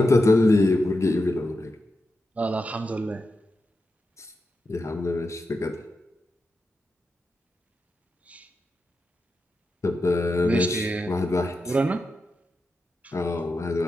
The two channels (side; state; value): both; normal; correlation 0.89